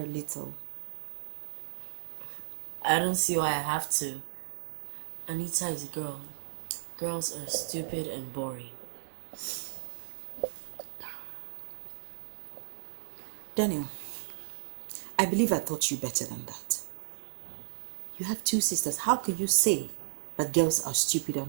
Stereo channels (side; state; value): left; silent; 55 dB below the other